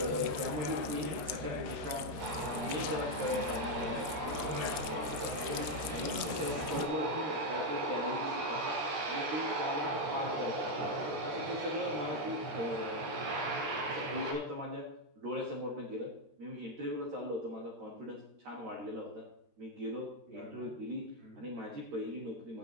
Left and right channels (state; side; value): late; left; 13 ms